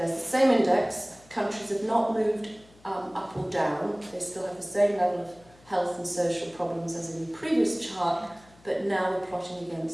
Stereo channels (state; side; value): noise; left; hum, 27 dB below the sound